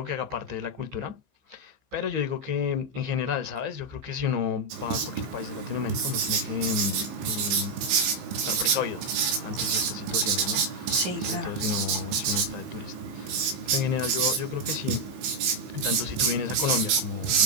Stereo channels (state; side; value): late; left; 15 ms